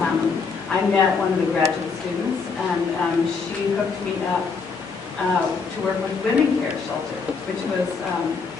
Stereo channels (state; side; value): quieter; right; 5.0 dB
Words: I met one of the graduate students and she hooked me up to work with Women Care Shelter, which was